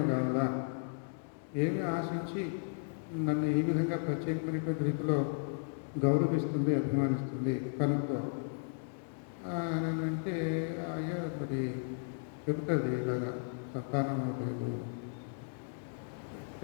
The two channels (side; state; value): right; silent; digital silence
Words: కావాలా? ఏమి ఆశించి నన్ను ఈ విధంగా ప్రత్యేకమైనటువంటి రీతిలో గౌరవిస్తుంది, అభిమానిస్తుంది కనుక్కో అని అంటే, అయ్యా మరి చెబుతుంది ఇలాగా సంతానం లేదు,